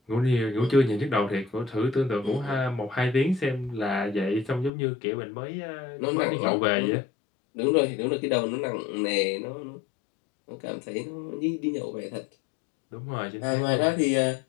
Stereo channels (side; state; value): right; drops out; at 4.7 s